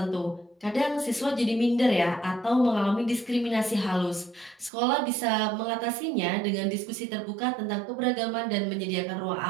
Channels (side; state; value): left; drops out; at 4.7 s